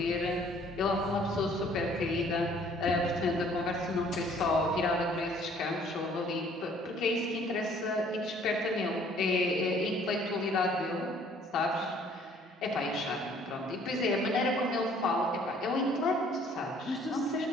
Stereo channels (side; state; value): both; normal; correlation 0.58